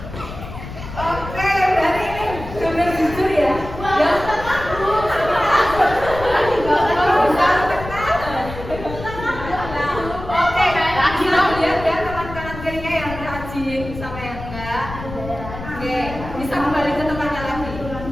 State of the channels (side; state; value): left; noise; rumble, 11 dB below the sound